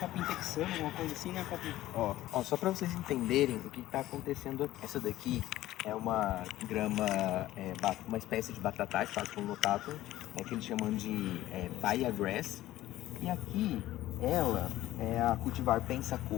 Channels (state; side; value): quieter; right; 15.2 dB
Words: texano, alguma coisa assim, né, Capim? Ó, só pra vocês entenderem o que tá acontecendo aqui. Essa daqui é uma grama, uma espécie de batatais, Paspalum notatum, que eles chamam de Baia Grass. E aqui, ela é a cultivar